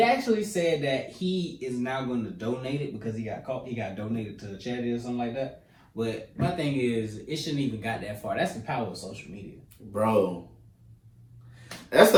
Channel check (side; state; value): both; identical; correlation 1.00